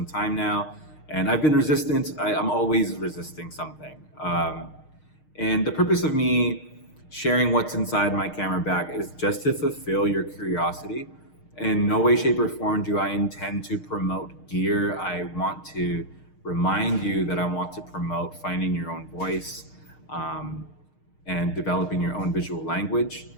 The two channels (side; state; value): right; late; 6.5 ms